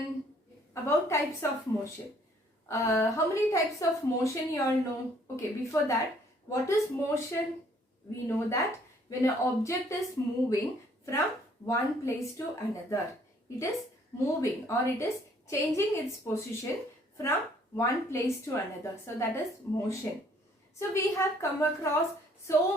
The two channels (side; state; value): both; normal; correlation 0.62